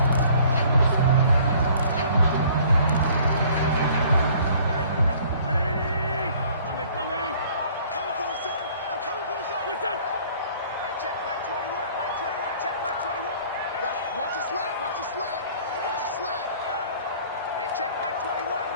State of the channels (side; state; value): both; inverted; correlation -0.54